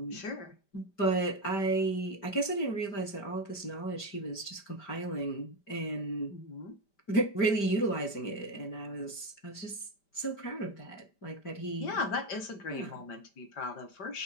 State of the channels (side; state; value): right; late; 5.1 ms